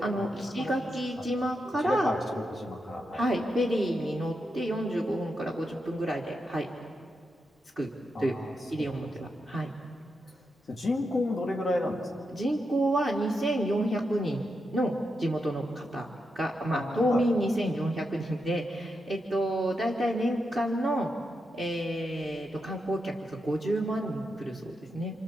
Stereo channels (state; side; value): normal; both; correlation 0.85